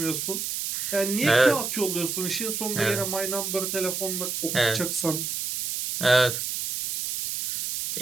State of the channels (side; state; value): right; noise; hiss, 3 dB below the sound